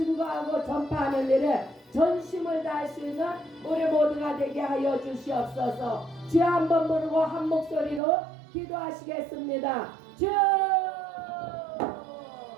전파하는 일에 전심을 다할 수 있는 우리 모두가 되게 하여 주시옵소서. 주 한 번 부르고 한 목소리로 기도하시겠습니다. 주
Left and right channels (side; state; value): left; drops out; at 8.0 s